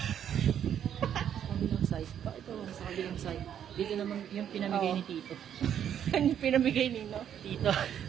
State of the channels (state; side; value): quieter; left; 9.4 dB